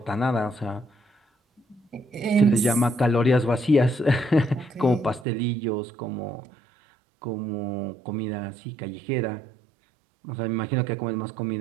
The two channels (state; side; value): drops out; left; at 5.2 s